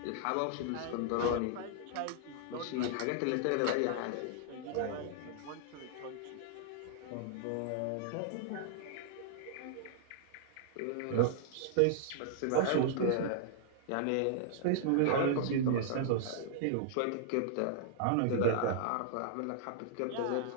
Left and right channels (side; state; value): both; different; correlation -0.01